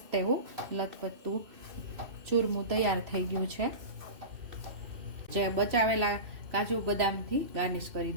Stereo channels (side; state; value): left; late; 2.6 ms